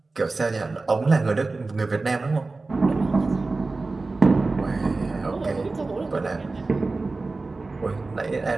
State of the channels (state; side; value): quieter; left; 3.5 dB